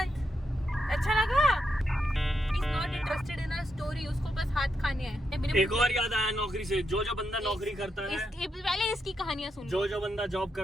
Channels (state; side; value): normal; both; correlation 0.83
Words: अच्छा लगा? He's not interested in a story, उसको बस हाथ खाने हैं। एक और याद आया नौकरी से, जो बंदा नौकरी करता है, पहले इसकी कहानियां सुन। जो बंदा जॉब